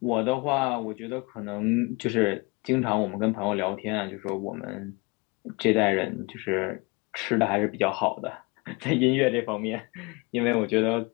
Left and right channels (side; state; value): right; quieter; 27.1 dB